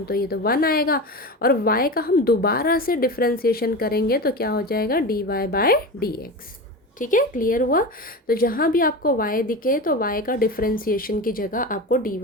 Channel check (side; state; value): both; normal; correlation 0.26